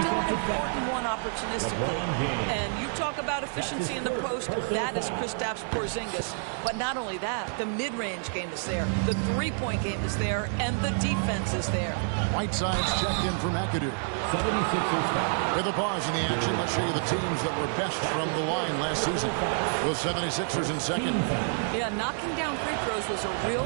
an important one opportunistically. And you talk about efficiency in the post, that is Kristaps Porzingis. But not only that, the mid-range game is there, the three-point game is there, and the defense is there. Whiteside's checked in for McAdoo. With a pause in the action, let's show you the teams that were best from the line last season. The 76ers in second. Yeah, knocking down free throws was a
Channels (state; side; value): silent; left; 59 dB below the other